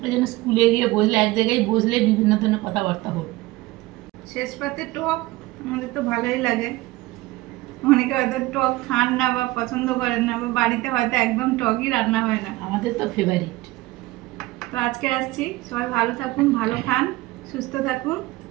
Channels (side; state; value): left; quieter; 19.5 dB